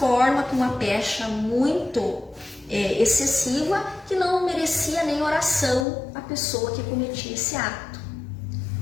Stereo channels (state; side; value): drops out; right; at 5.9 s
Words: com uma pecha muito excessiva, que não merecia nem oração a pessoa que cometia esse ato.